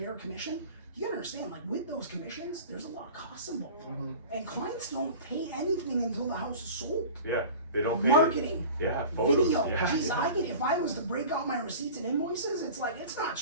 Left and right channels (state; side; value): inverted; both; correlation -0.39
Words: commission, you gotta understand, like, with those commissions, there's a lot of costs involved. And clients don't pay anything until the house is sold. Yeah, they don't pay. Marketing, Yeah, photos. video. Yeah. Jeez, if I was to break out my receipts and invoices, it's like, it's not